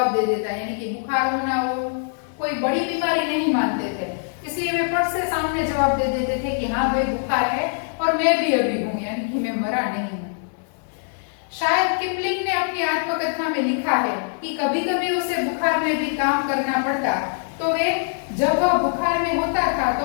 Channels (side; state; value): right; silent; digital silence